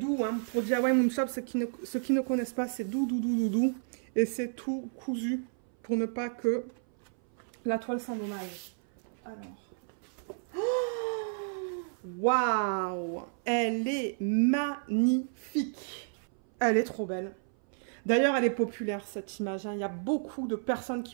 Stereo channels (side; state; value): left; silent; 57 dB below the other